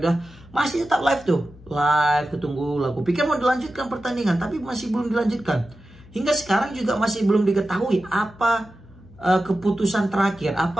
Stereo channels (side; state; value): left; noise; hum, 22 dB below the sound